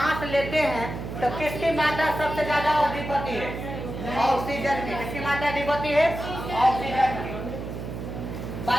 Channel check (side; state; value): right; noise; hum, 7 dB below the sound